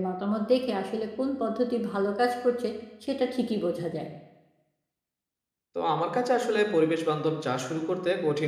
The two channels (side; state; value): both; identical; correlation 1.00